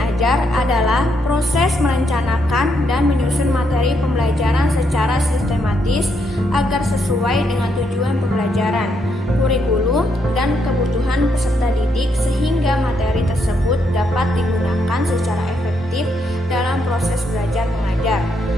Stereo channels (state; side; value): normal; both; correlation 0.77